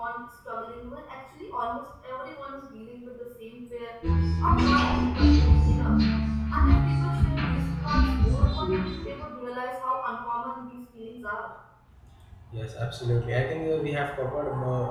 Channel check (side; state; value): both; identical; correlation 1.00